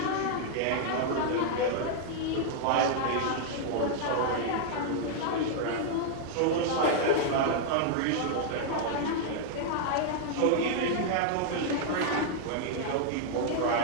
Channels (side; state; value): both; different; correlation -0.01